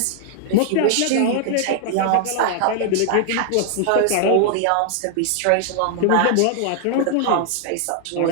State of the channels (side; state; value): both; different; correlation -0.01